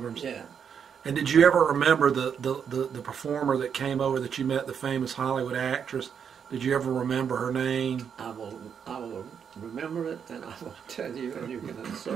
Yeah. And did you ever remember the performer that came over that you met, the famous Hollywood actress? Did you ever remember her name? I will remember it, and I will tell you, and you can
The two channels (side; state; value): left; quieter; 7.4 dB